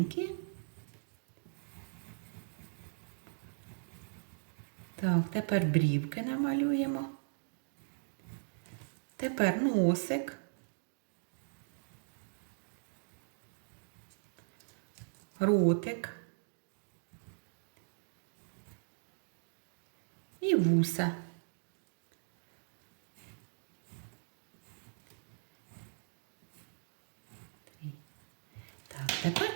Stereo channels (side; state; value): left; silent; digital silence